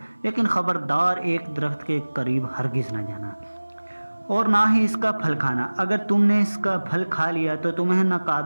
لیکن خبردار ایک درخت کے قریب ہرگز نہ جانا اور نہ ہی اس کا پھل کھانا۔ اگر تم نے اس کا پھل کھا لیا تو تمہیں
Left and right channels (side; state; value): both; inverted; correlation -1.00